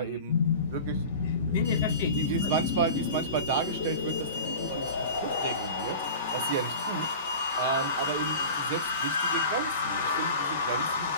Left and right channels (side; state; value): both; inverted; correlation -0.35